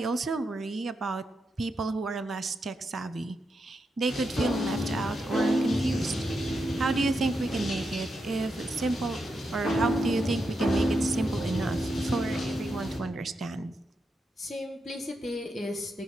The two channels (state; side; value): normal; both; correlation 0.85